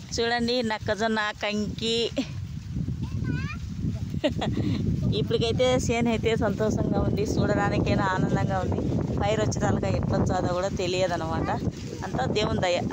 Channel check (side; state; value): both; identical; correlation 1.00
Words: చూడండి నక్కజొన్న కంకి. ఇప్పటికైతే చేను అయితే సంతోషంగా ఉంది, చూడడానికైనా ఆనందంగా ఉంది. పైరు వచ్చేదాకా ఎట్లా వచ్చాదో కూడా తెలియదు అనమాట. అంతా దేవుని దయ.